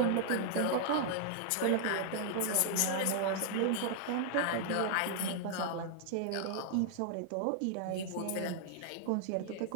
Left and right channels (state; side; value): different; both; correlation 0.00